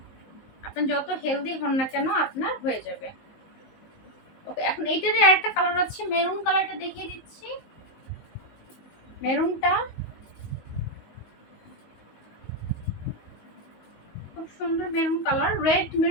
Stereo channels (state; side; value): late; right; 19 ms